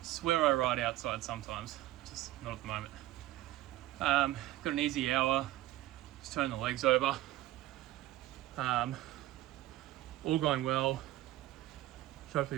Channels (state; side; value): quieter; left; 15.9 dB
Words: Swear I ride outside sometimes, just not at the moment. Got an easy hour, just turn the legs over. All going well. Should